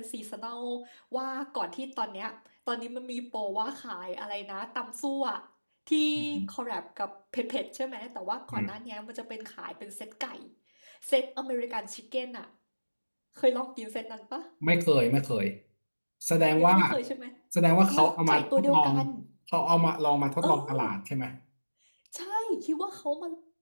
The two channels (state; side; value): inverted; both; correlation -1.00